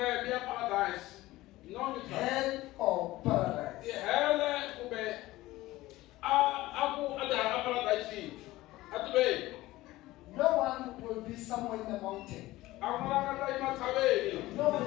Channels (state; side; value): quieter; right; 17.7 dB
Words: mi ya paradise. No mi try. Hell or paradise. Tihele kumbe a paradise. A tiveni. No one will be somewhere in the mountain. A ku na langa ta yima tshaveni. No